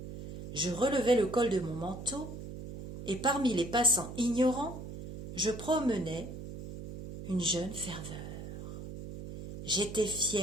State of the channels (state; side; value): noise; right; hum, 10 dB below the sound